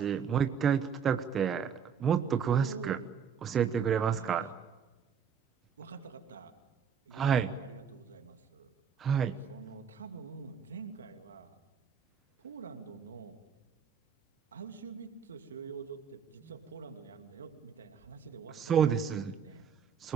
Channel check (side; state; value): left; quieter; 7.4 dB